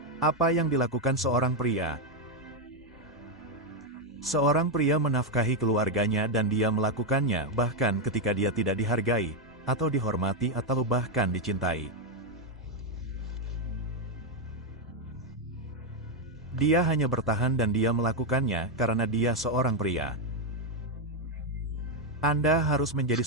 Apa yang dilakukan seorang pria? Seorang pria menafkahi keluarganya dan dia melakukannya bahkan ketika dia tidak dihargai, atau dihormati atau bahkan dicintai. Dia hanya bertahan dan dia melakukannya karena dia seorang pria. Anda harus menjadi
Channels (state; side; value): normal; both; correlation 0.03